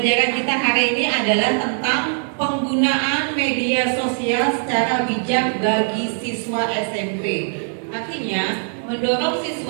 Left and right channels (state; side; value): silent; left; 65 dB below the other